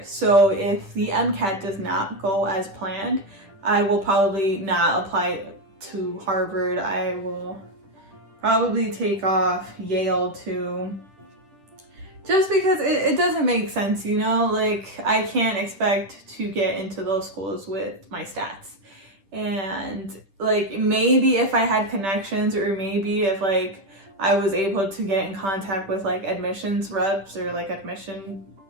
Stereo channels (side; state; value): left; late; 10 ms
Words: So if the MCAT does not go as planned, I will probably not apply to Harvard. I will probably take off Yale too, just because it doesn't make sense, you know, like I can't expect to get into those schools with my stats. And like maybe if I had connections, or maybe if like I was able to get in contact with like admissions reps or like admission